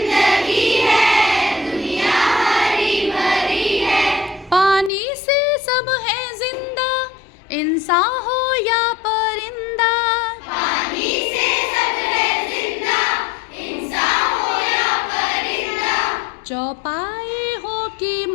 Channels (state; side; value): drops out; right; at 4.9 s